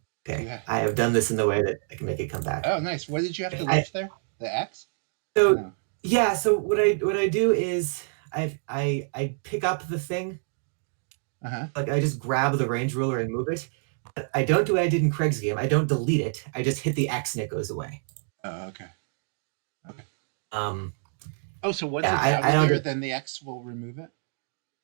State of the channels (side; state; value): left; silent; 60 dB below the other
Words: Okay, I have done this in the way that I can make it come back. Oh, nice. What did you have to lift there? The X? So no. Yeah, so what I do is I pick up the thing. Like I just grab the range ruler and move it. But I don't do what I did in Craig's game. I don't delete it. I just hit the X and it goes away. Oh, okay. Okay. Oh, so once it's out of there, then the X will remove it?